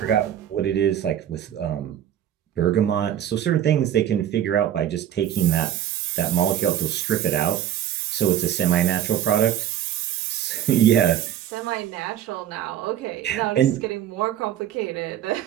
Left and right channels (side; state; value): left; quieter; 10.9 dB